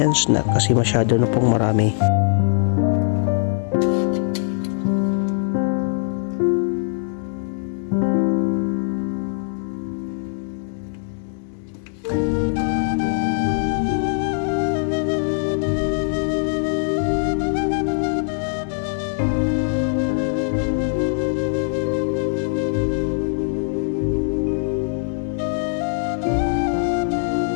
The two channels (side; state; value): right; silent; digital silence